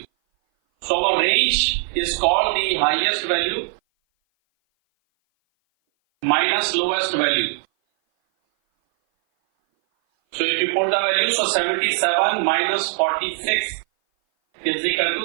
So our range is called the highest value minus lowest value. So if you put the value, so 77 minus 46 is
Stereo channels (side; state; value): left; silent; 58 dB below the other